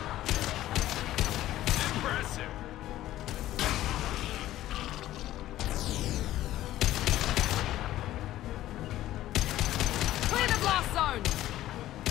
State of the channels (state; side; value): quieter; right; 14.4 dB